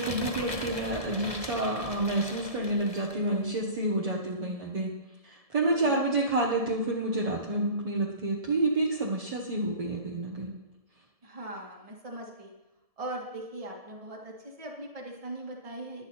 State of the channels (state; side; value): late; left; 1.7 ms